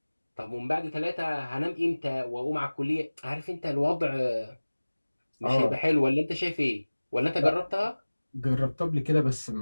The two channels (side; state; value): both; inverted; correlation -1.00